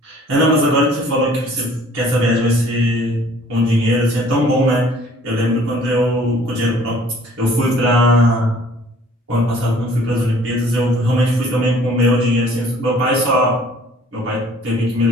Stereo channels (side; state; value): both; normal; correlation 0.54